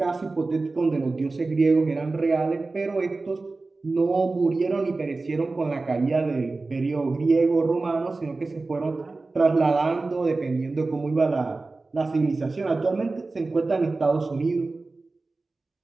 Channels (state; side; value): quieter; left; 3.5 dB